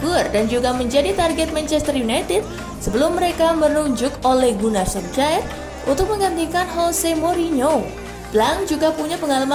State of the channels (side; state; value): both; identical; correlation 1.00